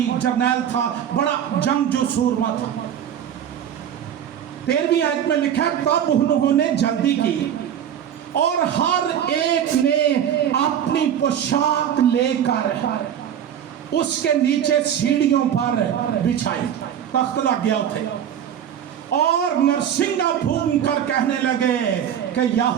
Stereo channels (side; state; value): left; quieter; 9.4 dB